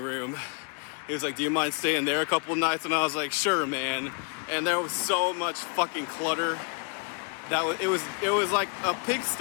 He was like, do you mind staying there a couple nights? And I was like, sure, man. And there was so much fucking clutter that it was like a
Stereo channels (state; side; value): quieter; right; 36.9 dB